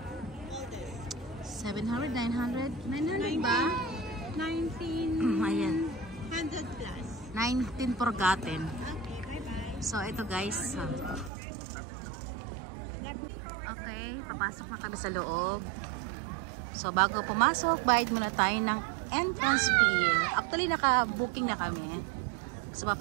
700, 900? 900 ba? 1900 Ayan. plus. 19 forgotten. Okay, bye-bye. So ito guys. Okay, papasok na kami sa loob. So bago pumasok, bayad muna tayo ng entrance fee. Actually naka-booking na kami. So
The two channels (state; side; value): drops out; left; at 11.3 s